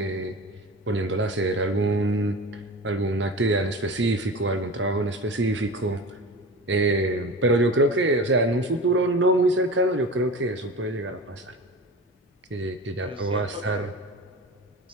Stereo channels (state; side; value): normal; both; correlation 0.32